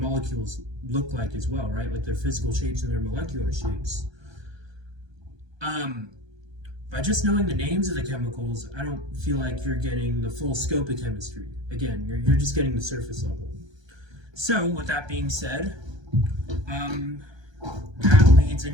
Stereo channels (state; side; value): late; left; 1.2 ms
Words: look like as well, right? Like their physical shapes and their molecular shapes. By just knowing the names of the chemicals, I don't feel like you're getting the full scope of chemistry. Again, you're just getting the surface level. So, with that being said, that leads